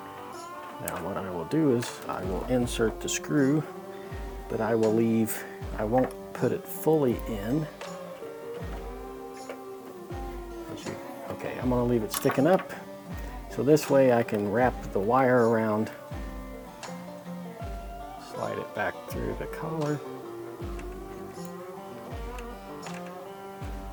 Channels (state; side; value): identical; both; correlation 1.00